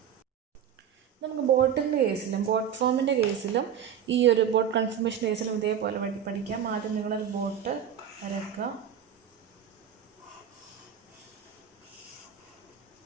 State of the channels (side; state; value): left; quieter; 8.7 dB